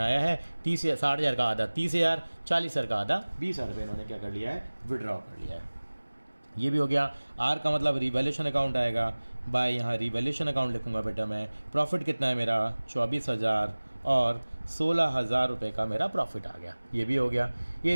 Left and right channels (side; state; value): both; inverted; correlation -1.00